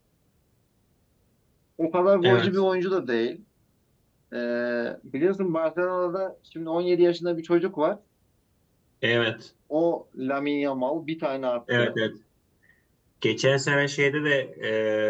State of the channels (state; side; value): identical; both; correlation 1.00